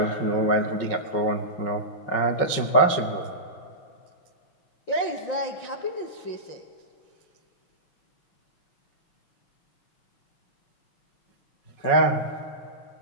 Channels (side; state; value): right; late; 5.5 ms